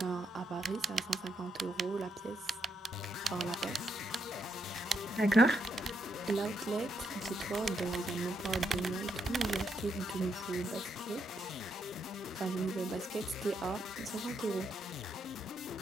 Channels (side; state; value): both; normal; correlation 0.79